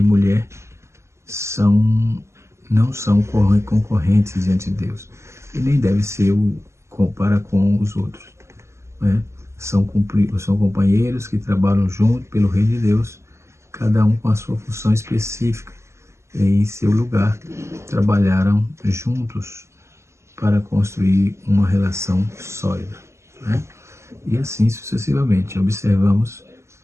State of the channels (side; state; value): left; late; 0.13 ms